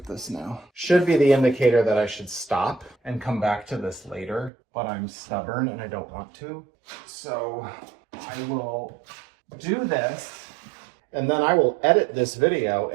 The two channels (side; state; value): left; drops out; at 4.5 s